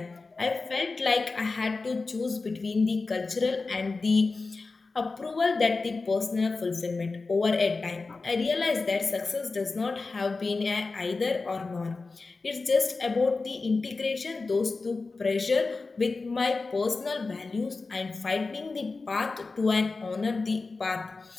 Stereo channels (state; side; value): quieter; right; 3.9 dB